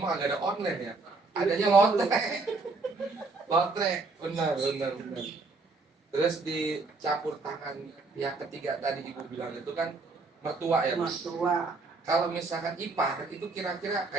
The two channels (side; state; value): left; quieter; 3.8 dB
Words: agak ada online ya. Adanya lotre. Lotre, benar. Terus dicampur tangan yang ketiga tadi Ibu bilang itu kan mertua ya Bu. Mertua. Kalau misalkan ipar itu kira-kira